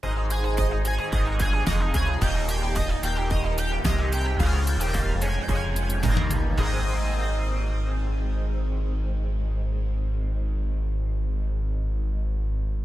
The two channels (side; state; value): both; normal; correlation 0.93